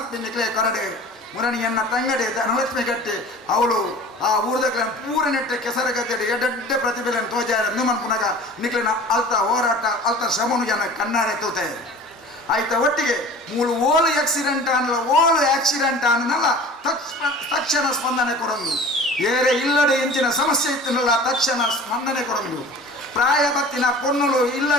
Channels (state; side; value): normal; both; correlation 0.42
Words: ನಿಕ್ಲೆ ಕೊರಡೆ ಮುರಣಿಯನ್ನ ತಂಗಡೆ ಧನಲಕ್ಷ್ಮಿ ಗಟ್ಟಿ ಅವಳು ಆ ಊರ್ದಕ್ಲ ಪೂರ ನೆಟ್ಟೆ ಕೆಸರ ಗದ್ದೆಡೆ ಎಡ್ಡೆ ಪ್ರತಿಭೆಯನ್ನು ತೋಜಾರ ಮನ್ಪುನಾಗ ನಿಕ್ಲಿನ ಅಲ್ತ ಹೋರಾಟ ಅಲ್ತ ಶ್ರಮನು ಜನ ಕಣ್ಣಾರೆ ತೂತೆ ಆಯ್ತ ಒಟ್ಟಿಗೆ ಮೂಲು ಓಲು ಆಕ್ಸಿಡೆಂಟ್ ಅನ್ನಲ್ಲ ತಕ್ಷಣ ಸ್ಪಂದನೆ ಕೊಡೊಂದು ಏರೆ ಇಲ್ಲದೆ ಎಂಚಿನ ಸಮಸ್ಯೆ ಇತ್ತನಲ್ಲ ತಕ್ಷಣ ಸ್ಪಂದನೆ ಕೊಡೊಂದು ಪ್ರಾಯ ಬತ್ತಿನ ಪೊಣ್ಣುಲು